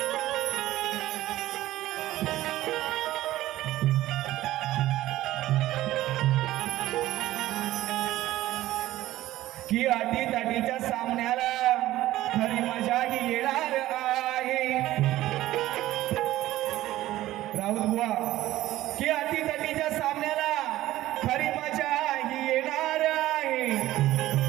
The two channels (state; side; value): quieter; left; 15.3 dB